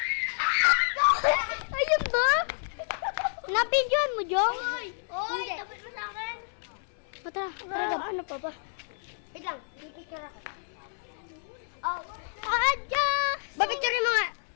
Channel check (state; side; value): silent; right; 58 dB below the other